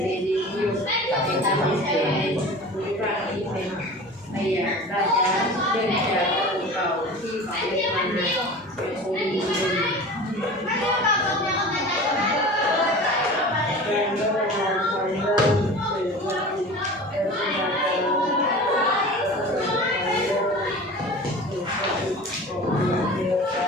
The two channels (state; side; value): normal; both; correlation 0.37